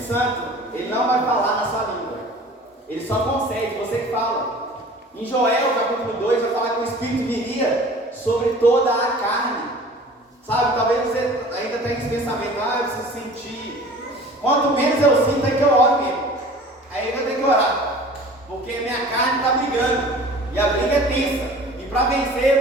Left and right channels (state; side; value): normal; both; correlation 0.44